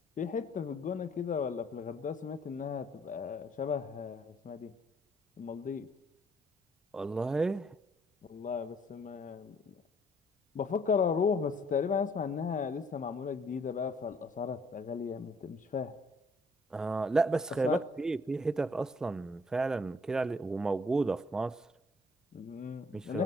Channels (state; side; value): normal; both; correlation 0.63